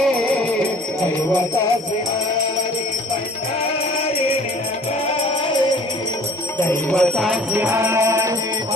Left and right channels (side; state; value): both; normal; correlation 0.49